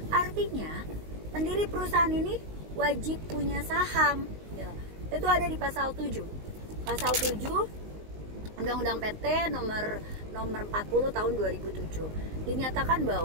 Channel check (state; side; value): late; left; 19 ms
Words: Artinya, pendiri perusahaan ini wajib punya saham. Ya, itu ada di pasal 7. Pasal 7 Undang-Undang PT nomor 40 tahun 2007. Dinyatakan